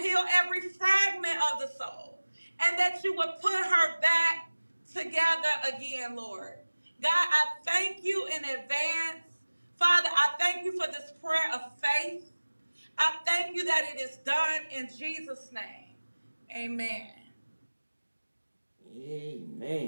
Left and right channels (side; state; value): both; inverted; correlation -1.00